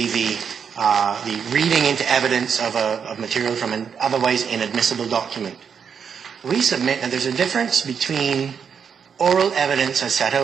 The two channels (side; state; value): left; quieter; 6.9 dB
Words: the reading into evidence of material from an otherwise inadmissible document. We submit that there's a difference between oral evidence as set